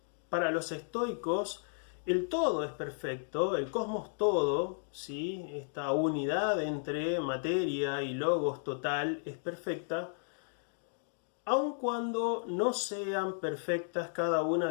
para los estoicos el todo es perfecto, el cosmos todo, ¿sí? Esta unidad entre materia y logos total es perfecta, aun cuando no sean perfectas cada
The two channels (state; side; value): silent; right; digital silence